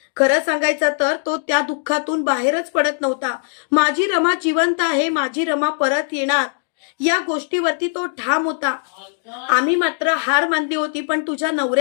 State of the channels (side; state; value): right; silent; digital silence